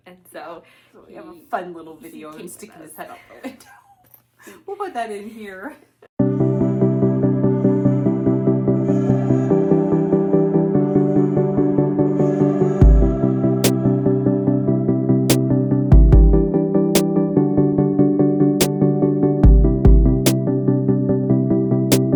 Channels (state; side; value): identical; both; correlation 1.00